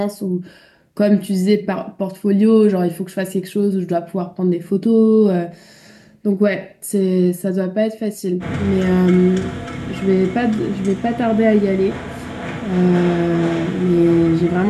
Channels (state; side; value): identical; both; correlation 1.00